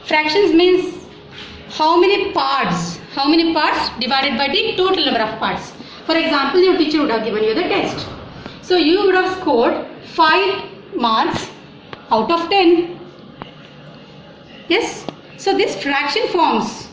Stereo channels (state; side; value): identical; both; correlation 1.00